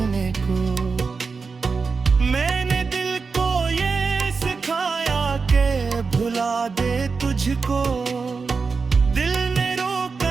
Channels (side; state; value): left; quieter; 4.8 dB